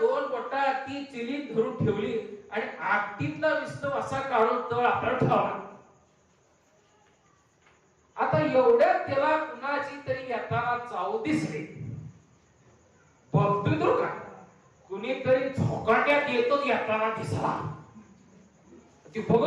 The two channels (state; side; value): identical; both; correlation 1.00